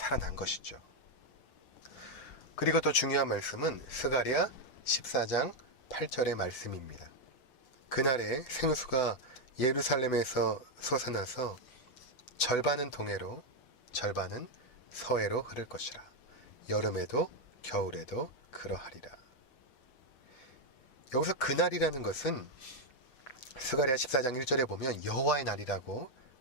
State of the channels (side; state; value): right; late; 7.9 ms